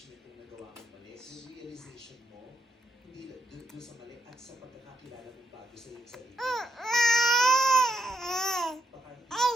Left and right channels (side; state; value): both; normal; correlation 0.80